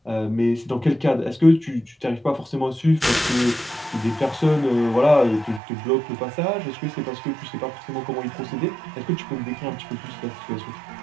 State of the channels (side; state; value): left; drops out; at 5.6 s